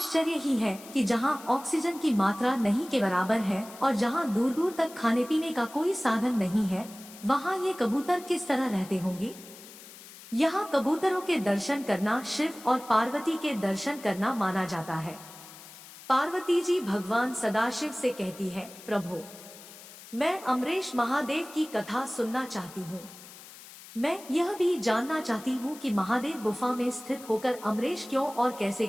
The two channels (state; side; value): noise; left; hiss, 18 dB below the sound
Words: ही है कि जहां ऑक्सीजन की मात्रा नहीं के बराबर है और जहां दूर दूर तक खाने पीने का कोई साधन नहीं है, वहां ये कबूतर किस तरह रहते होंगे। यहाँ कबूतरों के दर्शन करना शिव और पार्वती के दर्शन करना माना जाता है। पार्वती जी भगवान सदाशिव से कहती है, प्रभु, मैं अमरेश महादेव की कथा सुनना चाहती हूँ। मैं यह भी जानना चाहती हूँ कि महादेव गुफा में स्थित होकर अमरेश क्यों और कैसे